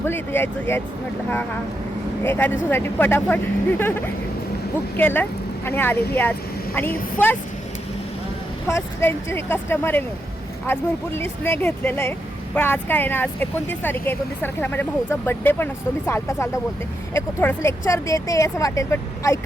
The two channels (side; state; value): both; normal; correlation 0.83